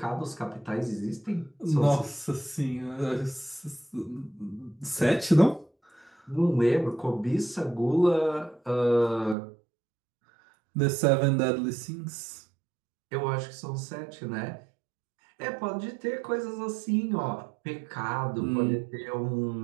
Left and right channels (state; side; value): drops out; left; at 9.3 s